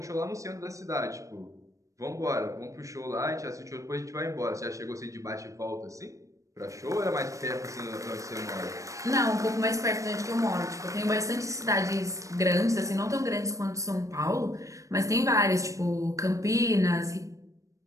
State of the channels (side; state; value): left; late; 0.16 ms